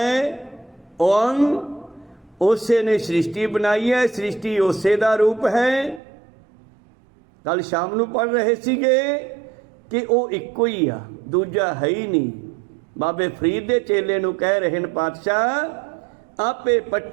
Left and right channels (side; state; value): left; drops out; at 6.0 s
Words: ਓੰ, ਉਸੇ ਨੇ ਸ੍ਰਿਸ਼ਟੀ ਬਣਾਈ ਹੈ, ਸ੍ਰਿਸ਼ਟੀ ਉਸੇ ਦਾ ਰੂਪ ਹੈ। ਕੱਲ ਸ਼ਾਮ ਨੂੰ ਪੜ੍ਹ ਰਹੇ ਸੀਗੇ ਕਿ ਉਹ ਇੱਕੋ ਹੀ ਆ, ਦੂਜਾ ਹੈ ਹੀ ਨਹੀਂ। ਬਾਬੇ ਫਰੀਦ ਦੇ ਚੇਲੇ ਨੂੰ ਕਹਿ ਰਹੇ ਨੇ ਪਾਤਸ਼ਾਹ, ਆਪੇ